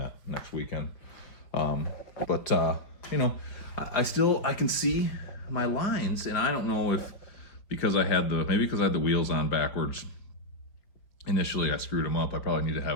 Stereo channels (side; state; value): right; late; 5.3 ms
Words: next weekend. You know, I can see my lines, and I don't know if because I had the wheels on backwards. Initially, I screwed them up. I probably need to